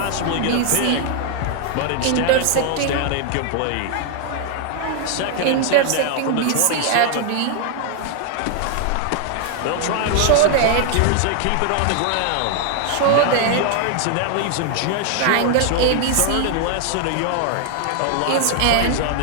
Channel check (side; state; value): both; different; correlation 0.00